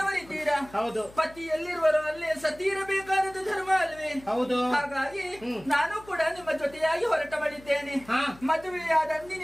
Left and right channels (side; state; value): left; noise; hum, 22 dB below the sound